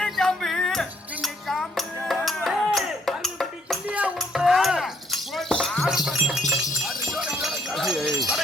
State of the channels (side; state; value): both; normal; correlation 0.67